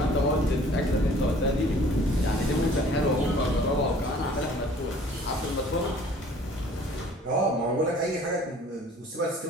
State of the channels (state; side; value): normal; both; correlation 0.53